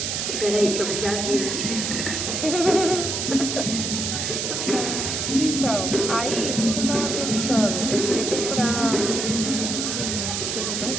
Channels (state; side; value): noise; right; hiss, 2 dB below the sound